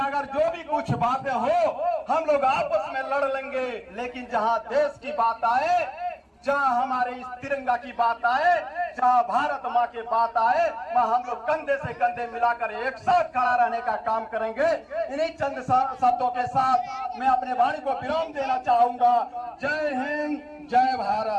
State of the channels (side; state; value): both; identical; correlation 1.00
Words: जो भी कुछ बातें हो हम लोग आपस में लड़ लेंगे, लेकिन जहां देश की बात आए, जहां हमारे इस तिरंगा की बात आए, जहां भारत माँ की बात आए, वहां हम लोग कंधे से कंधे मिलाकर एक साथ खड़ा रहने का काम करेंगे। इन्हीं चंद शब्दों के साथ मैं अपने वाणी को विराम देना चाहूंगा। जय हिंद, जय